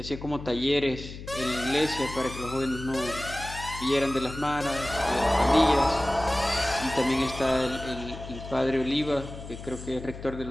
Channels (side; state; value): left; noise; hum, 12 dB below the sound